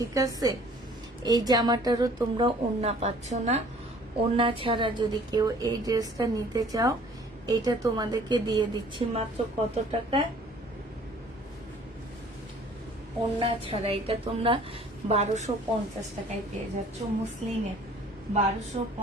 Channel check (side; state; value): both; normal; correlation 0.53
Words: আছে? এই জামাটারও তোমরা ওড়না পাচ্ছ না। ওড়না ছাড়া যদি কেউ এই ড্রেসটা নিতে চাও, এটা তোমাদেরকে দিয়ে দিচ্ছি মাত্র কত টাকায়? ওড়না ছাড়া এটা তোমরা 1250 টাকায় পেয়ে যাচ্ছ। মুসলিনে